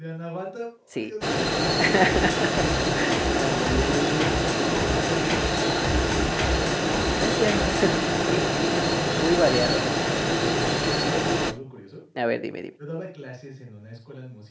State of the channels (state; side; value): identical; both; correlation 1.00